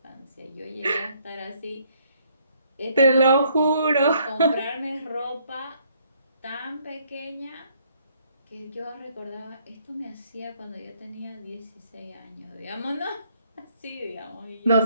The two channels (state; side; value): inverted; both; correlation -0.67